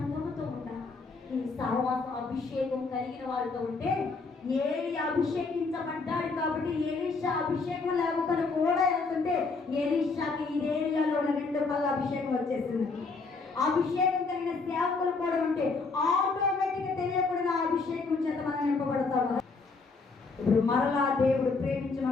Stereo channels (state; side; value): quieter; right; 4.1 dB